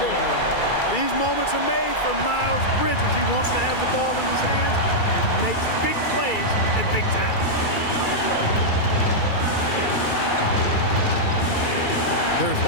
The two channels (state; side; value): late; right; 2.3 ms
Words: These moments are made for Miles Bridges. He wants to have the ball in his hands and makes big plays at big time. There's